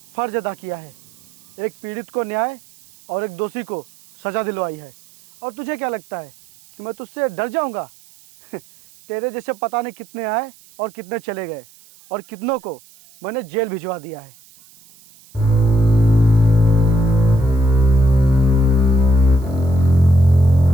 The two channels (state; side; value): noise; right; hiss, 27 dB below the sound